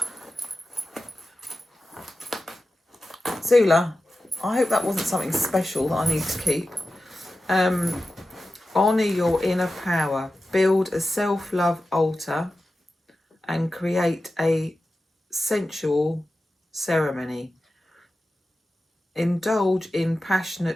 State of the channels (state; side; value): normal; both; correlation 0.93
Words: Zula, I hope that wasn't something special that I need to keep. Honour your inner power. Build a self-love altar and create a sensual ceremony. Indulge in